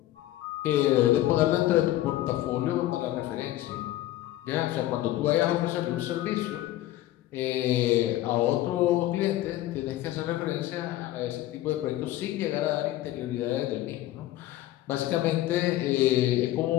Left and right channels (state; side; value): quieter; right; 14.9 dB